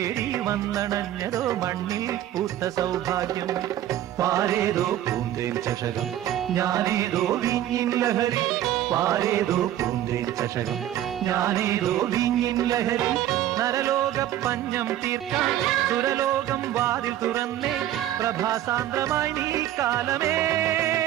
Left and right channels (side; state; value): left; quieter; 12.6 dB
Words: വന്നണഞ്ഞതോ മണ്ണിൽ പൂത്ത സൗഭാഗ്യം പാരേതോ പൂന്തേൻ ചഷകം ഞാനേതോ വിങ്ങിൻ ലഹരി പാരേതോ പൂന്തേൻ ചഷകം ഞാനേതോ വിങ്ങിൻ ലഹരി നരലോക പഞ്ഞം തീർക്കാൻ സുരലോകം വാതിൽ തുറന്നേ പ്രഭാസാന്ദ്രമായി നീ കാലമേ